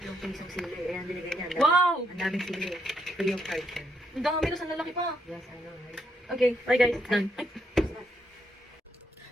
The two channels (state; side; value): normal; both; correlation 0.76